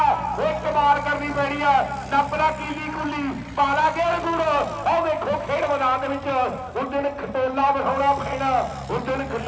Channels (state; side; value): identical; both; correlation 1.00